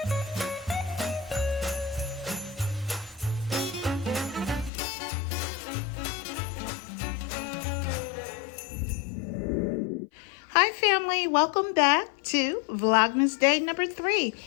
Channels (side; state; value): right; drops out; at 4.7 s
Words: Hi family, welcome back to Vlogmas day number 3.